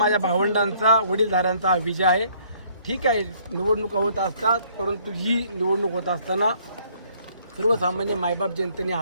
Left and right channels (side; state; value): both; inverted; correlation -0.63